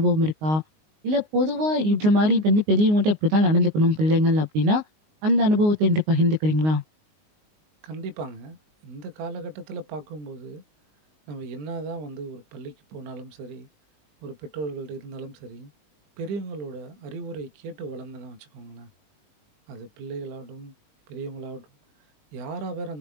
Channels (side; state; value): left; late; 19 ms